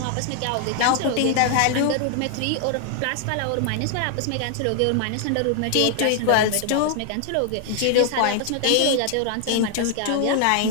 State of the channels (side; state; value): both; different; correlation 0.00